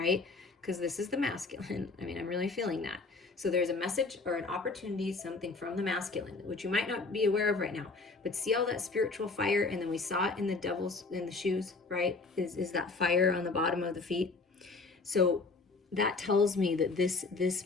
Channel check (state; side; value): quieter; right; 3.8 dB